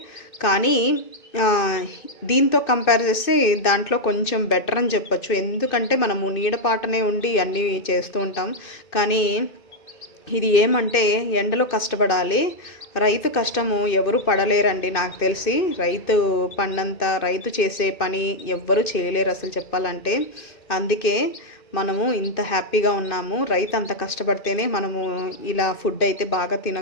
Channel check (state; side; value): late; right; 2.6 ms